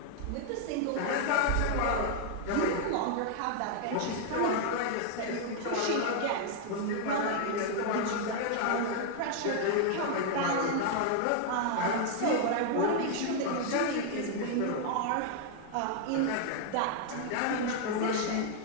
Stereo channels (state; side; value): different; both; correlation 0.00